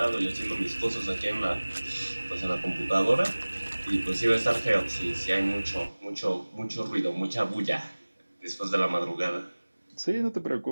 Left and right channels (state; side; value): inverted; both; correlation -1.00